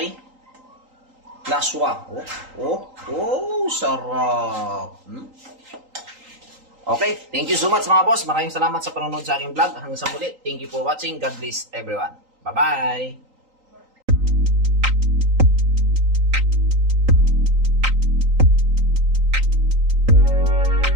laswa. Oh, sarap. Okay, thank you so much, mga boss. Maraming salamat sa panonood sa aking vlog. Hanggang sa muli. Thank you for watching. God bless everyone. Bye-bye.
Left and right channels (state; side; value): late; left; 3.8 ms